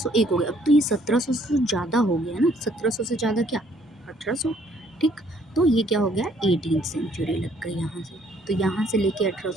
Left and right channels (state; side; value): normal; both; correlation 0.64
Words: हो गया। अब तो ये 1700 से ज़्यादा हो गया ना, 1700 से ज़्यादा क्या? 1800। ठीक, तो ये क्या हो गया? 18th सेंचुरी लग गई यहाँ से। तो यहाँ से लेके